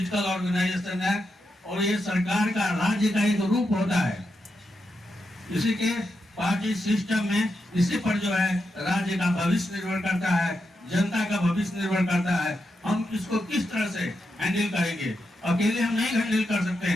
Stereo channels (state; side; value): normal; both; correlation 0.85